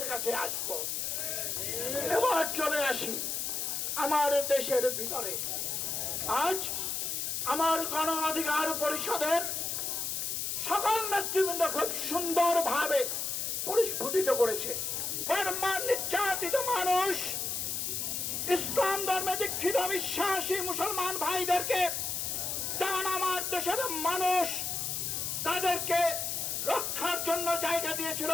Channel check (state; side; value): noise; left; hiss, 1 dB below the sound